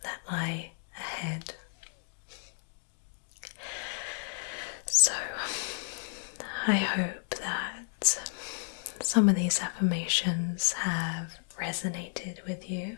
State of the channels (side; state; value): right; silent; digital silence